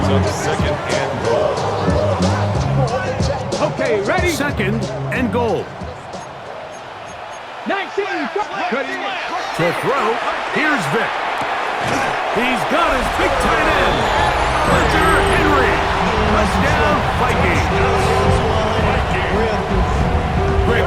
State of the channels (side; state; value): both; identical; correlation 1.00